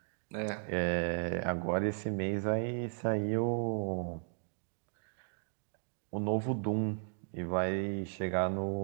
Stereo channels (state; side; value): silent; left; digital silence